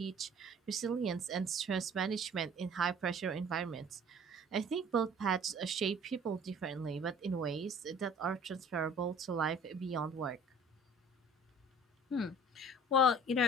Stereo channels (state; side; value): normal; both; correlation 0.49